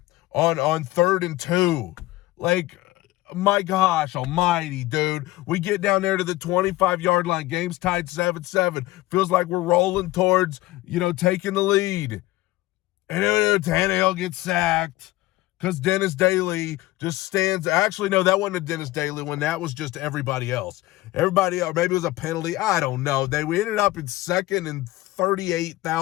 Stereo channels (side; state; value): right; quieter; 18.0 dB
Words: on 3rd and 2. Like, my gosh almighty, dude. We get down there to the 25-yard line. Game's tied 7-7. Feels like we're rolling towards, taking the lead. And then Tannehill gets sacked because Dennis Daly just stands. Actually, no, that wasn't a Dennis Daly one. That was just everybody else. Everybody else, maybe it was a penalty. I don't know. We ended up in 2nd and